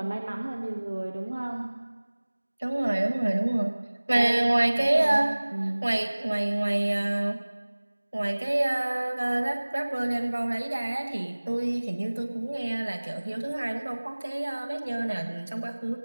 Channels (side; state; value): both; inverted; correlation -1.00